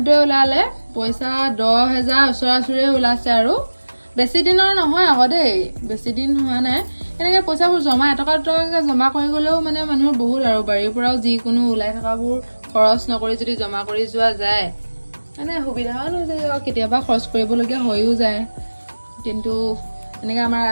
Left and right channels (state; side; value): inverted; both; correlation -1.00